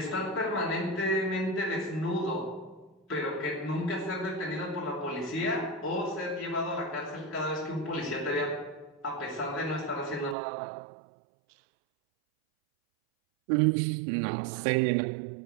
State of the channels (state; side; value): drops out; left; at 10.4 s